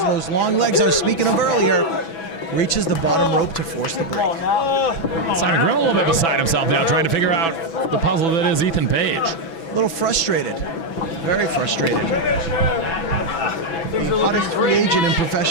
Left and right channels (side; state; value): right; late; 6.1 ms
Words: long legs I was speaking of earlier, reaches the bottom rope to force the break. Simon Grimm a little bit beside himself now, trying to figure out the puzzle that is Ethan Page. A little frustrated. Very frustrated. The hottest free agent in